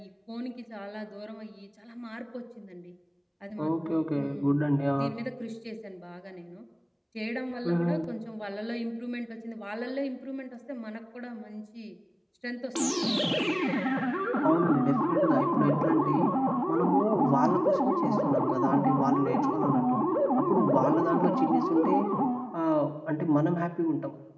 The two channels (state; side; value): identical; both; correlation 1.00